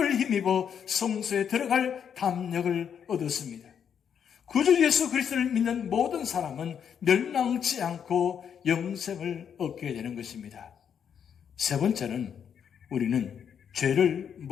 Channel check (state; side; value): quieter; right; 7.9 dB